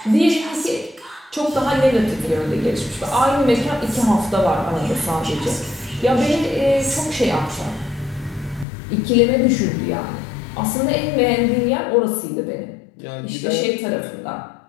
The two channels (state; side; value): drops out; right; at 8.7 s